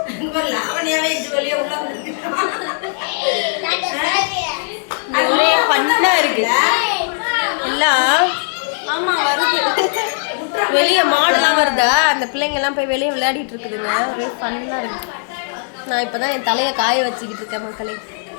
லாவணியாவே இது வழியா உள்ள ஒரே பண்ணா இருக்கு எல்லாம். வெளியே மாடெல்லாம் வருதா, அந்த பிள்ளைங்கெல்லாம் போய் வெளியே விளையாடிட்டு இருக்குதுங்க. ஒரே ஃபன்னா இருக்கு. நான் இப்பதான் என் தலையை காய வச்சுக்கிட்டு இருக்கேன் மக்களே.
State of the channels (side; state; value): right; silent; digital silence